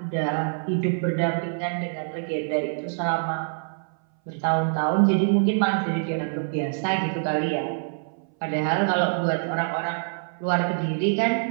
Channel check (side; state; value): left; silent; 62 dB below the other